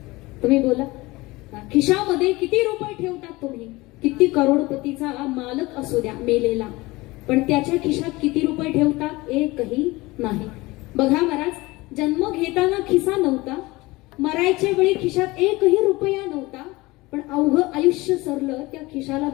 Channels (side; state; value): right; quieter; 21.3 dB